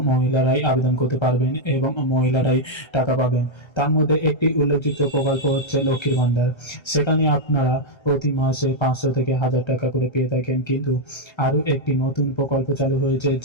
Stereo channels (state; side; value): late; right; 1.3 ms